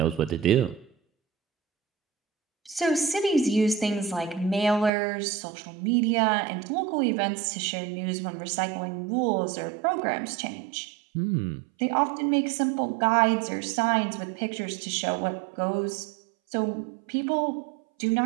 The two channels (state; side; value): drops out; left; at 4.9 s